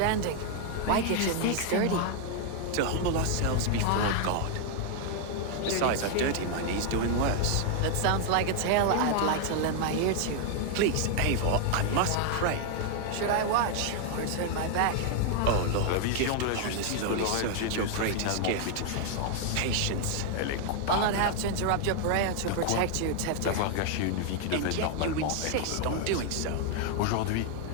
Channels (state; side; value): different; both; correlation 0.00